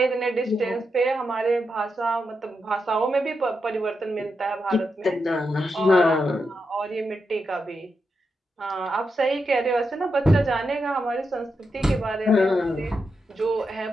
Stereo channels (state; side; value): normal; both; correlation 0.85